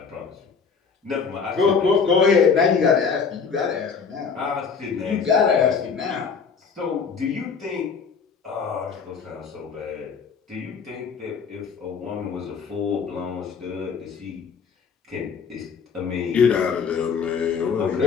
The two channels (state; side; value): quieter; right; 5.8 dB